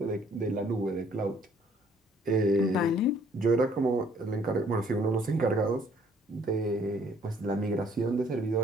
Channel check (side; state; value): both; normal; correlation 0.62